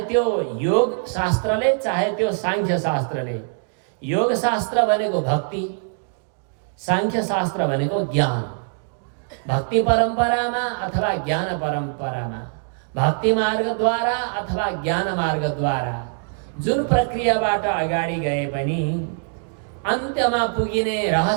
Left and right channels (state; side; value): silent; left; digital silence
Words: त्यो योग शास्त्रले, चाहे त्यो सांख्य शास्त्रले। योग शास्त्र भनेको भक्ति, सांख्य शास्त्र भनेको ज्ञान। भक्ति परम्परामा अथवा ज्ञान परम्परामा, भक्ति मार्गद्वारा अथवा ज्ञान मार्गद्वारा जुन प्रक्रियाबाट अगाडि गए पनि अन्त्यमा पुगिने